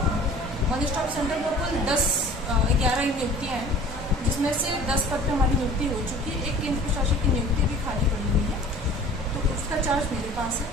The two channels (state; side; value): normal; both; correlation 0.46